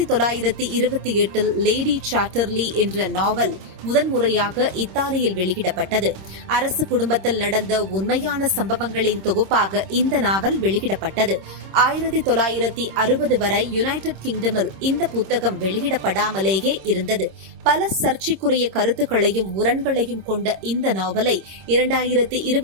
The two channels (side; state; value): left; late; 26 ms